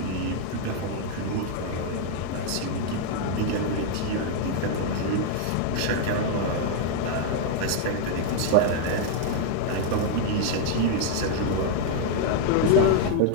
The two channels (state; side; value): different; both; correlation 0.00